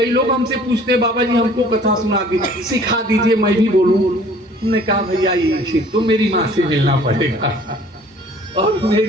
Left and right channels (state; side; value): normal; both; correlation 0.53